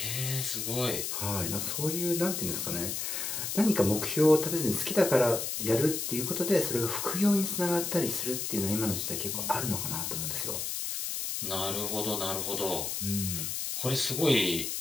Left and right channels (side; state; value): left; noise; hiss, 3 dB below the sound